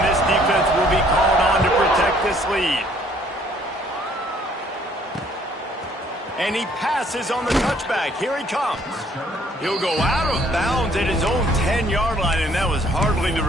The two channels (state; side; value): normal; both; correlation 0.62